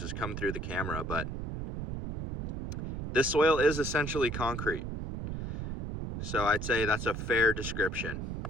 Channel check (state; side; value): noise; right; rumble, 5 dB below the sound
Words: come through the camera, but this soil is essentially concrete. So I'd say that's a fair description.